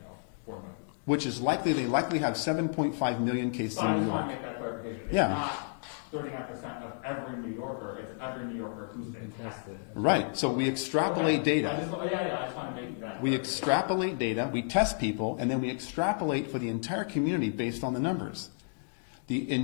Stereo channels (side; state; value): right; silent; digital silence